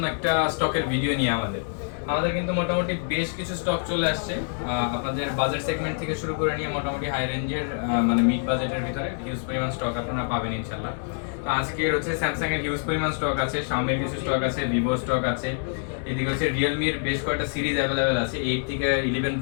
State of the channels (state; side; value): silent; right; 61 dB below the other